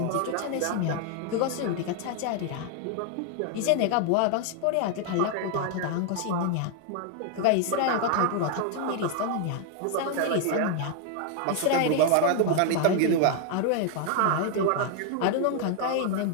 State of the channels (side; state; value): both; different; correlation 0.00